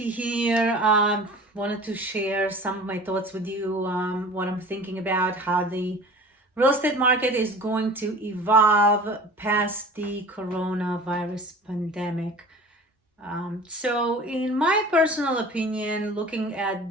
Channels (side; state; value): both; normal; correlation 0.41